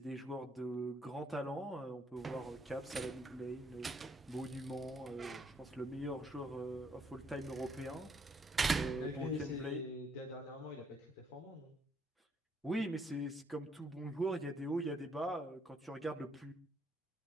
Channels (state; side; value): normal; both; correlation 0.70